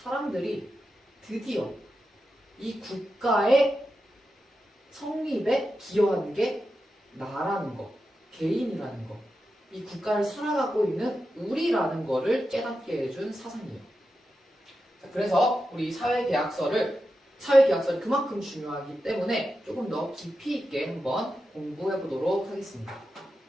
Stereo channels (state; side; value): normal; both; correlation 0.89